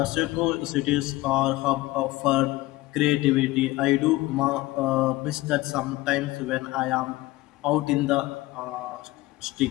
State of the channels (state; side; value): quieter; right; 18.7 dB